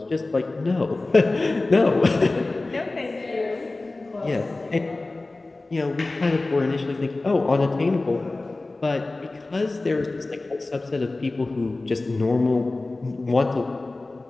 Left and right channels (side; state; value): right; quieter; 3.1 dB